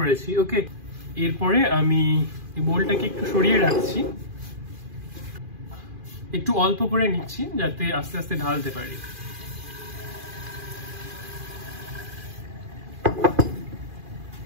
ওকে, এরপরে আমি এই বোলটাকে একটু সরিয়ে রাখছি, একটু অল্প করে নিচ্ছি যাতে আস্তে আস্তে ঢালতে পারি।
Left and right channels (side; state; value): left; late; 2.4 ms